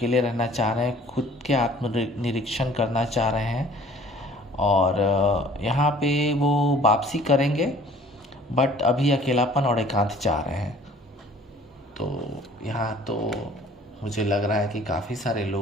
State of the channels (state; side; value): normal; both; correlation 0.53